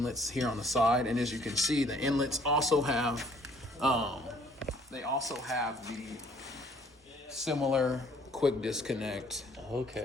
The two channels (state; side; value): normal; both; correlation 0.59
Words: here on the side, and as you can see, the inlets also have, the similar quick disconnect.